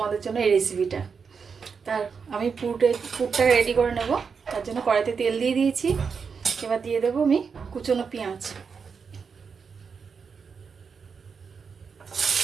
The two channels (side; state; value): left; quieter; 5.8 dB